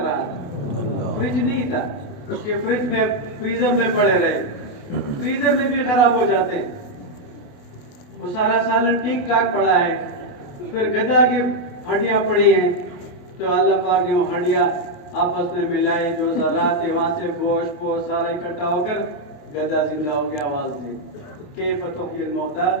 رہا تھا؟ فریج نہیں تھا کہ فریج میں فریزر میں پڑے رہے، فریزر میں بھی خراب ہو جاتے ہیں، وہ سارا سالن ٹھیک ٹھاک پڑا ہے، پھر گدا کی ہڈیاں پڑی ہیں، تو اللہ پاک نے وہ ہڈیاں آپس میں ملائے، جو ذرات تھے وہاں سے گوشت کو سارا اکٹھا ہو کر گدا زندہ ہو گیا، آواز دی کیف تحیی الموتیٰ۔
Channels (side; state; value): right; late; 28 ms